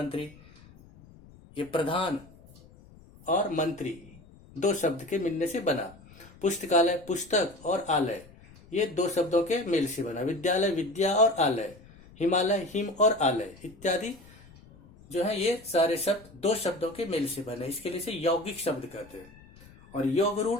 ये प्रधान और मंत्री 2 शब्द के मिलने से बना। पुस्तकालय, पुस्तक और आलय ये 2 शब्दों के मेल से बना। विद्यालय, विद्या और आलय, हिमालय, हिम और आलय इत्यादि जो है ये सारे शब्द 2 शब्दों के मेल से बने। इसके लिए से यौगिक शब्द कहते हैं। और योग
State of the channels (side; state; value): left; noise; rumble, 23 dB below the sound